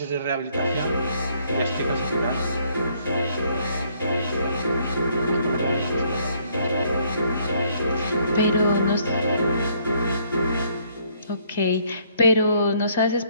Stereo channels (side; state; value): both; inverted; correlation -0.66